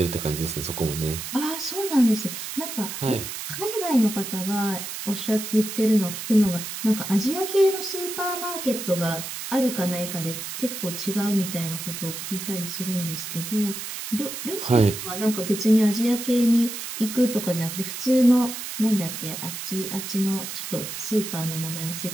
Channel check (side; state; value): right; noise; hiss, 7 dB below the sound